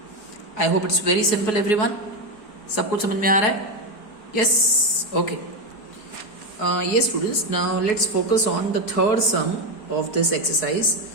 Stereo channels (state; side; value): late; right; 4.7 ms